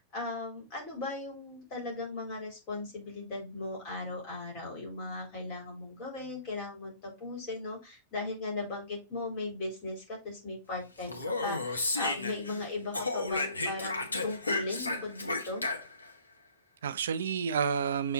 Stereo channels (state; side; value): inverted; both; correlation -0.55